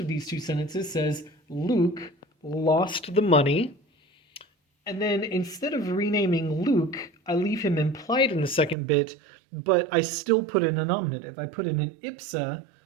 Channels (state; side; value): drops out; left; at 8.8 s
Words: these two sentences says, Luke lost the money. And then instead of renaming Luke, I leave him implied in the second bit, but I still put in a nominative. I put in an ipsa,